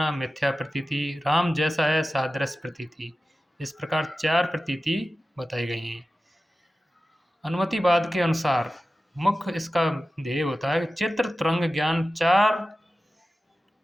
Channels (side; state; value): both; normal; correlation 0.94